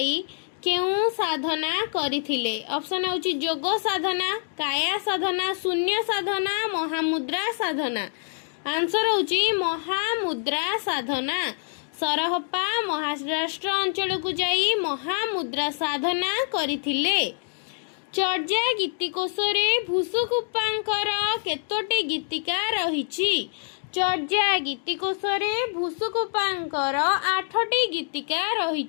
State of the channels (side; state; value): right; silent; 61 dB below the other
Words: केउ साधना करिथिले। ऑप्शन होची जोग साधना, काया साधना, शून्य साधना, महामुद्रा साधना। आंसर होची महामुद्रा साधना। सरहप्पा महाराष्ट्र अंचल को जाई महामुद्रा साधना करिथिले। चर्या गीतिकोश रे भूसुकुप्पांकर केतोटी गीतिका रहिछि। चर्या गीतिकोश रे भूसुकुप्पांकर 8टी गीतिका